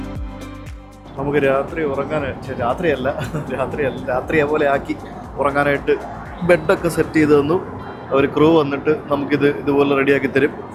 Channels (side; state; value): both; identical; correlation 1.00